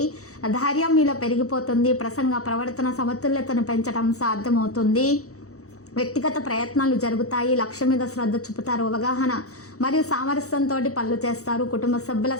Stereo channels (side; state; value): right; late; 0.65 ms